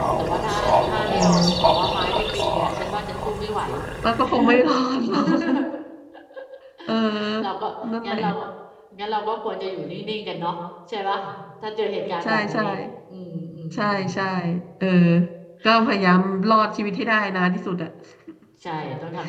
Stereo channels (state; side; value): identical; both; correlation 1.00